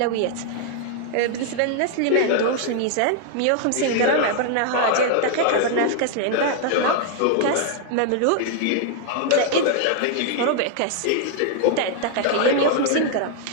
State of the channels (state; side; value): different; both; correlation 0.00